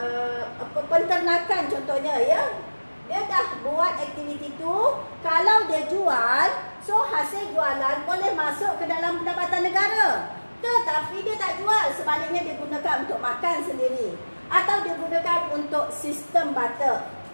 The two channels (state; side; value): inverted; both; correlation -1.00